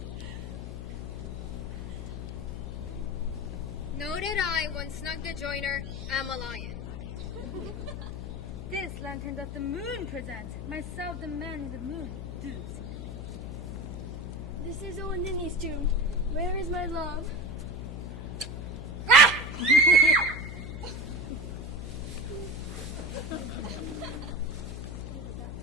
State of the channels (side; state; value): left; noise; hum, 7 dB below the sound